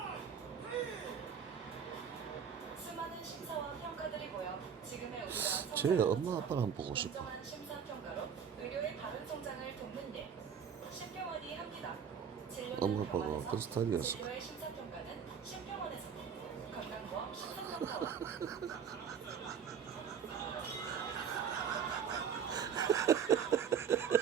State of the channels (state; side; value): quieter; left; 7.4 dB